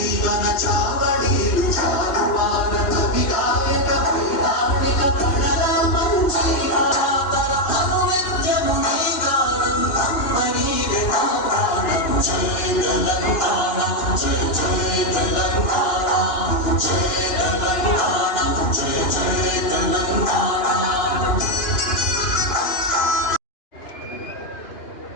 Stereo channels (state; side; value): late; right; 2.9 ms